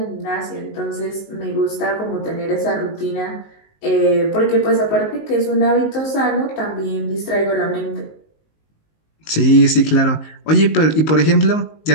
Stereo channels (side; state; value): right; late; 19 ms